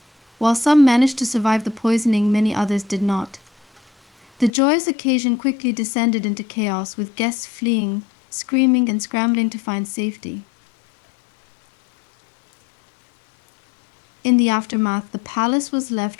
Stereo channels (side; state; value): right; drops out; at 4.5 s